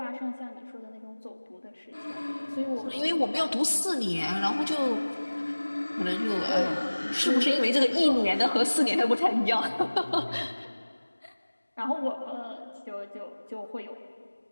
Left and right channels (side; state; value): both; inverted; correlation -1.00